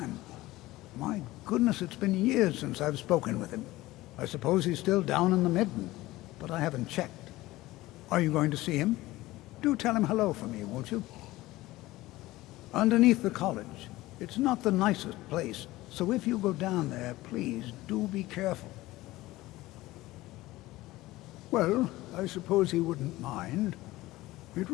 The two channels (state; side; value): quieter; right; 18.1 dB